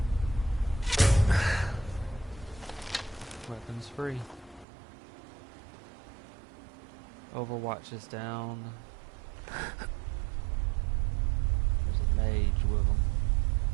Weapons free. Overwatch is down. There's a mage with him.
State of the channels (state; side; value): drops out; left; at 4.7 s